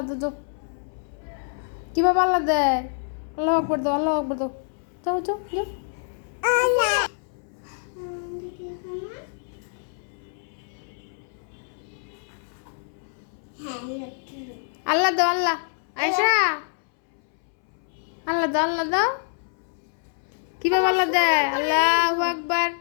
দাও, যাও। কিভাবে আল্লাহ দেয়? আল্লাহ আকবর দাও, আল্লাহ আকবর দাও। যাও যাও যাও। আল্লাহ দাও, আল্লাহ। আয়শা আল্লাহ দাও, আল্লাহ দাও। কিভাবে আল্লাহ দেয়? আল্লাহু আকবার,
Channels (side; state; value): right; silent; 61 dB below the other